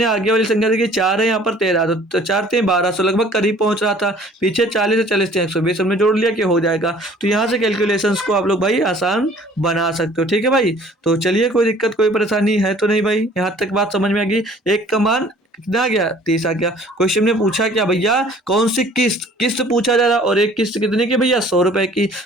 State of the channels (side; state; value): both; normal; correlation 0.53